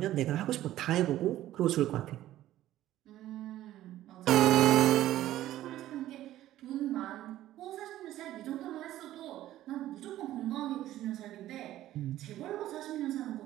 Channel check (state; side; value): quieter; left; 13.9 dB